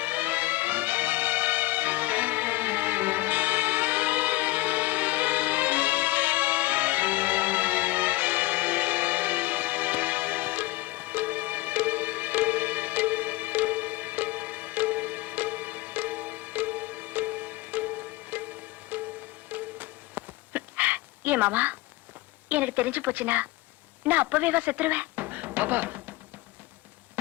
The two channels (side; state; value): right; quieter; 19.7 dB